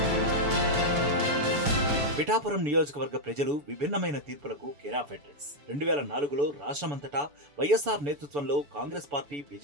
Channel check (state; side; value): late; left; 7.0 ms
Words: పిఠాపురం నియోజకవర్గ ప్రజలు విభిన్నమైన తీర్పులకు కేరాఫ్ అడ్రస్. 2004లో రాష్ట్రమంతటా వైఎస్ఆర్ నేతృత్వంలో కాంగ్రెస్ పార్టీ